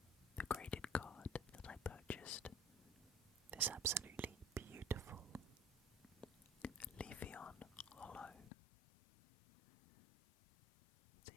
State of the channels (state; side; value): drops out; right; at 8.5 s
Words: the graded card that I purchased. This absolutely beautiful Leafeon Hollow. It's